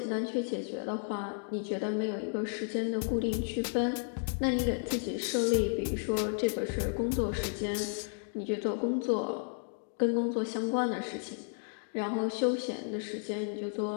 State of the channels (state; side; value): silent; right; digital silence